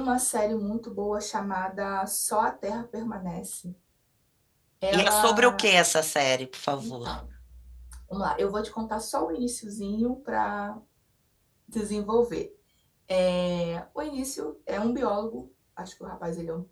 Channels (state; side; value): identical; both; correlation 1.00